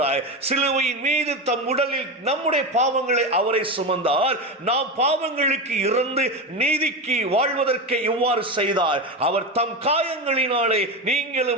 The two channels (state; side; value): normal; both; correlation 0.18